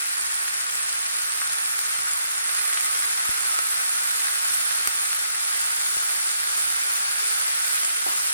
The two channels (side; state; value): both; inverted; correlation -0.75